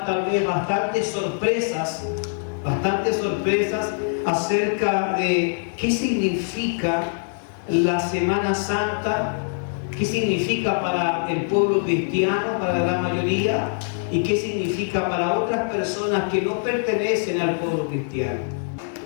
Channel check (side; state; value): right; silent; digital silence